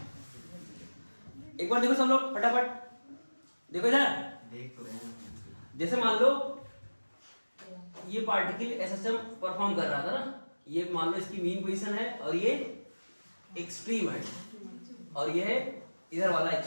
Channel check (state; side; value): inverted; both; correlation -1.00